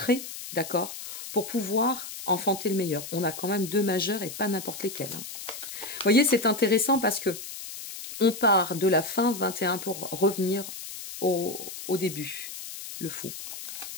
d'accord, pour pouvoir enfanter le meilleur. On a quand même 2 majeurs et pas n'importe lesquels. Hein. Vous voyez, c'est intéressant parce que on part de la fin 21 pour revenir au début. Le fou.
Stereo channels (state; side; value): noise; left; hiss, 10 dB below the sound